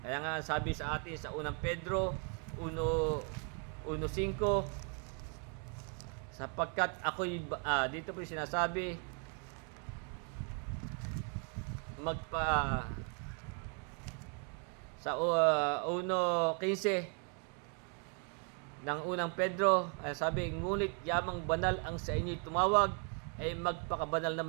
nga sabi sa atin sa 1 Pedro 1:5, sapagkat ako'y dito po sinasabi sa 1:15 ng 1 Pedro, sabi, ngunit yamang banal ang sa inyo'y tumawag, ay magpakabanal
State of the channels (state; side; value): quieter; left; 38.6 dB